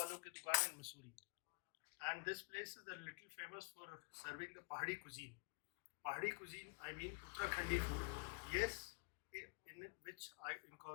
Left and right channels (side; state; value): right; quieter; 32.5 dB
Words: ki dukaan in Mussoorie. And this place is a little famous for serving the Pahadi cuisine. Pahadi cuisine, I mean Uttarakhandi food. Yes, in which I